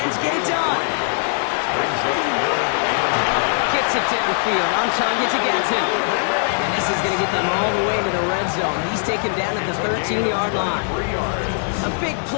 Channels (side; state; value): right; silent; 65 dB below the other